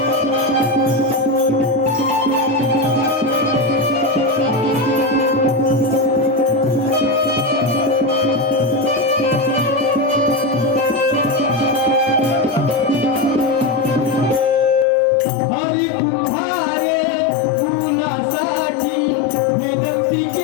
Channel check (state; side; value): drops out; right; at 14.9 s